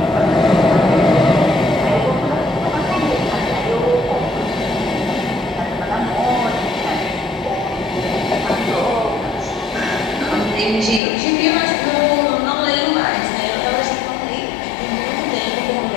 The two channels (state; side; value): drops out; right; at 11.0 s